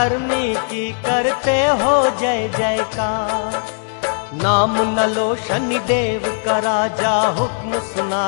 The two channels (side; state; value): right; silent; digital silence